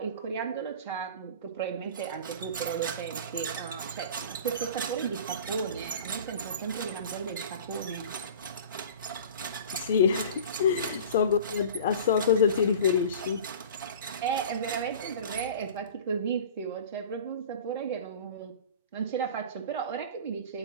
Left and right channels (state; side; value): inverted; both; correlation -0.38